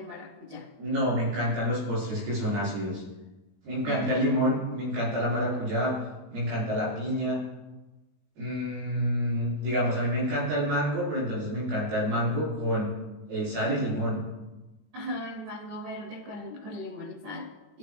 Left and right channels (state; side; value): late; left; 20 ms